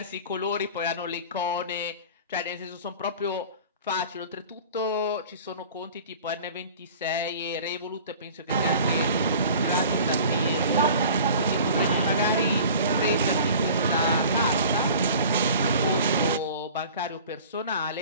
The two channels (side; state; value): both; inverted; correlation -0.43